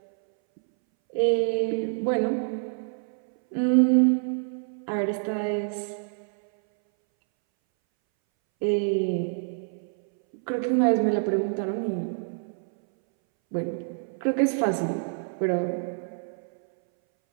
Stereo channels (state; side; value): silent; left; 60 dB below the other